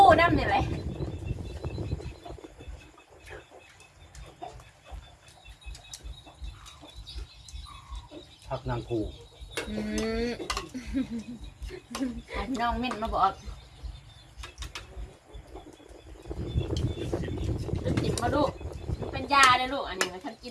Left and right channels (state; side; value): identical; both; correlation 1.00